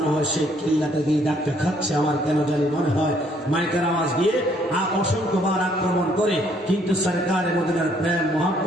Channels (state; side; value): normal; both; correlation 0.66